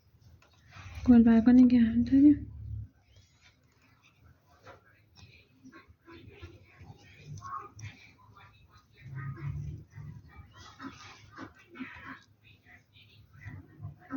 گل برگا نگه داریم.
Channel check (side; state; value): both; identical; correlation 1.00